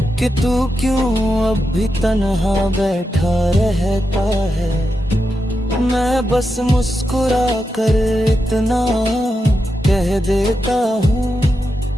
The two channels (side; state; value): both; normal; correlation 0.87